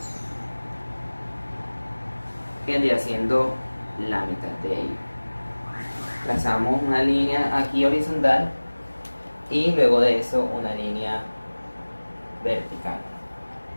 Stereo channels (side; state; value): both; inverted; correlation -1.00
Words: Vendría siendo la mitad de ello. Trazamos una línea aquí horizontal y luego de eso una línea vertical.